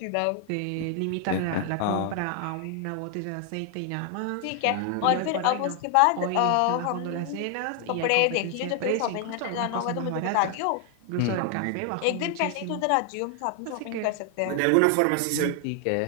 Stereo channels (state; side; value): different; both; correlation 0.00